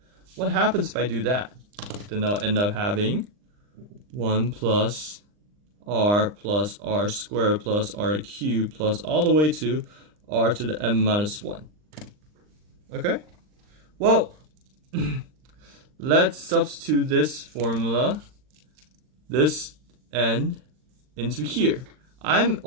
What happens if I do that? Then I'll end up having 1 plus r squared plus r cubed plus all the way to r to the n minus 1. Okay? Well, let's substitute this formula, this n, into here. I'm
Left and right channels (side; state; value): left; late; 39 ms